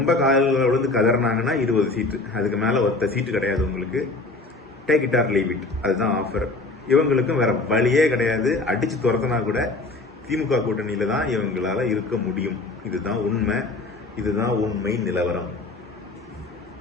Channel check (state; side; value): quieter; right; 3.3 dB